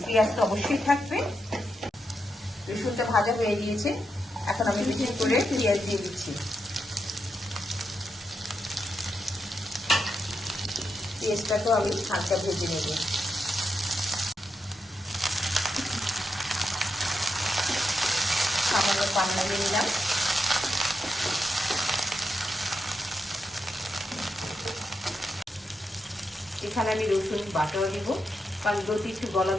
পেঁয়াজ তো অবশ্যই থাকবে। রসুনটা ভাজা হয়ে গিয়েছে, এখন আমি বেশি করে পেঁয়াজ দিয়ে দিচ্ছি। পেঁয়াজটাকেও আমি হালকা ভেজে নেব। সামান্য পান লাগিয়ে নিলাম। এখানে আমি রসুন বাটাও দিব, কারণ লতি একটু গলা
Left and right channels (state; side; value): normal; both; correlation 0.85